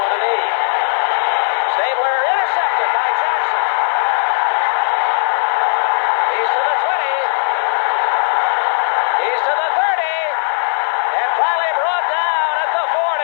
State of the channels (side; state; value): right; silent; digital silence